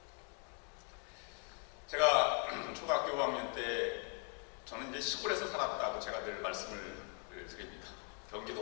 제가 초등학교 5학년 때 저는 이제 시골에서 살았다고 제가 늘 말씀을 드립니다. 경기도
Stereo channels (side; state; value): right; quieter; 38.8 dB